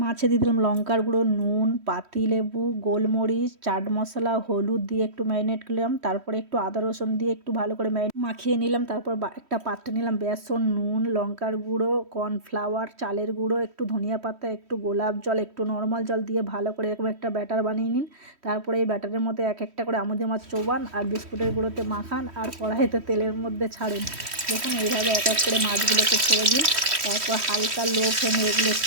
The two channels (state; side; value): late; left; 3.1 ms